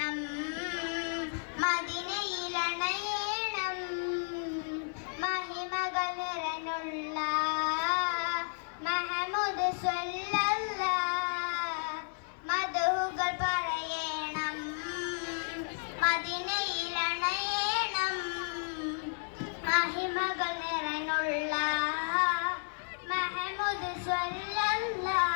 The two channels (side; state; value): right; silent; 56 dB below the other